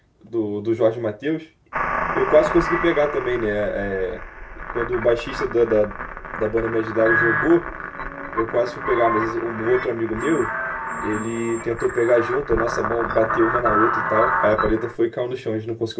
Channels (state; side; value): identical; both; correlation 1.00